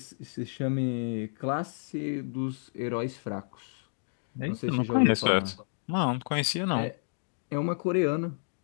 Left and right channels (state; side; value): silent; right; digital silence